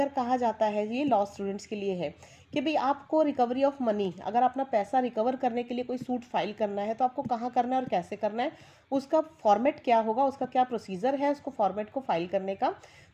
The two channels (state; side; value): identical; both; correlation 1.00